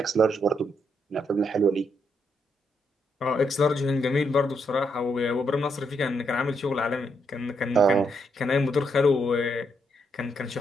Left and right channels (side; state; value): both; normal; correlation 0.77